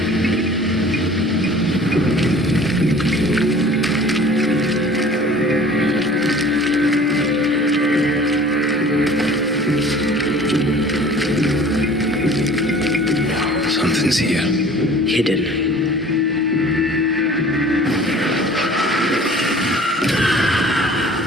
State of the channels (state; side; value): normal; both; correlation 0.47